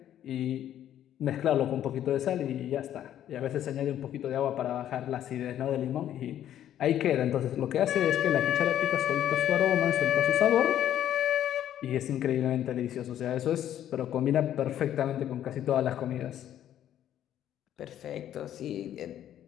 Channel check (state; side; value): quieter; right; 11.2 dB